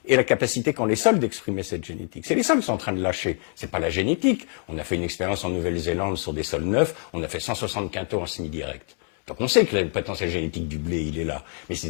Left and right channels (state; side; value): quieter; right; 35.6 dB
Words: et la capacité qu'ont les sols d'exprimer cette génétique. C'est les sols qui sont en train de lâcher, c'est pas la génétique. On a fait une expérience en Nouvelle-Zélande sur des sols neufs, on a fait 160 quintaux en semi-direct. Donc on sait que le potentiel génétique du blé, il est là. Mais c'est